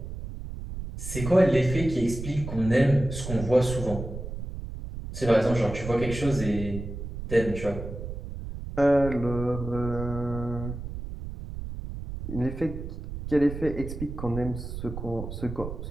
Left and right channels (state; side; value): noise; right; rumble, 8 dB below the sound